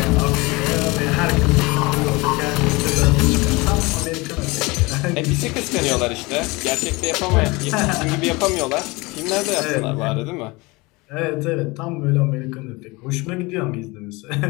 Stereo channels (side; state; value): right; quieter; 24.1 dB